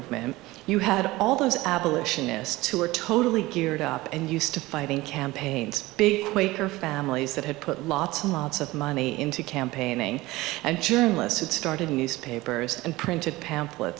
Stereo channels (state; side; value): quieter; left; 19.5 dB